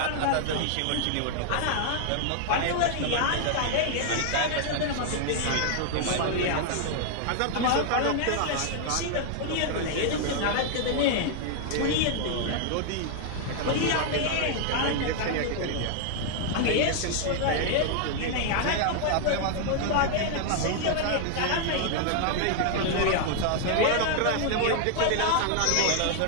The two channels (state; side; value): different; both; correlation 0.00